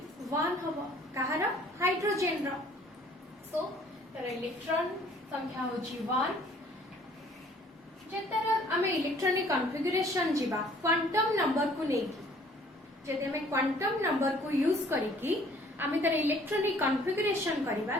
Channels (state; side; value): normal; both; correlation 0.57